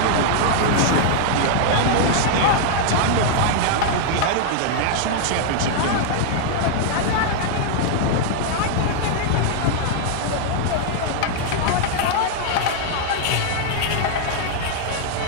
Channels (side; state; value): both; different; correlation -0.01